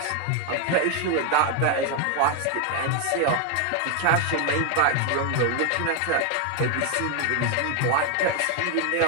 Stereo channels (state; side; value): different; both; correlation 0.01